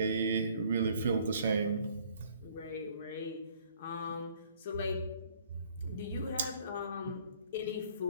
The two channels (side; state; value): both; inverted; correlation -0.59